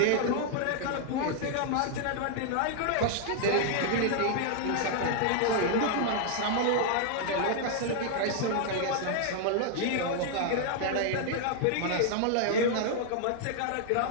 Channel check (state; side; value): different; both; correlation 0.00